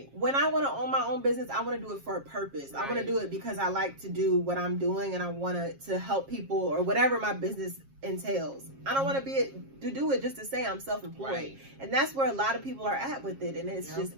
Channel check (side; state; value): left; late; 7.4 ms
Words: When I want to own my own business, I want to do it for a purpose. Right. I want to do it because I like to do what I'm doing, and I want to help people or whatever my business entails. I don't want to do it just to say I'm self-employed. Right. And that's where a lot of people are at with it, and it's just